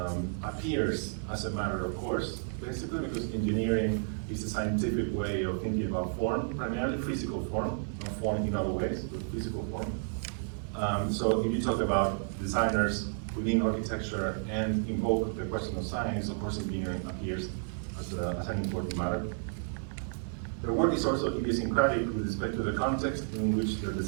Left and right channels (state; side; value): silent; left; 57 dB below the other